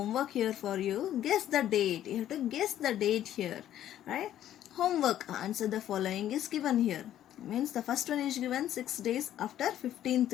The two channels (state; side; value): quieter; right; 11.7 dB